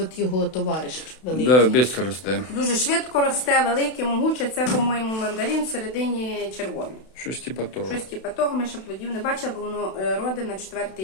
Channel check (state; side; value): late; right; 32 ms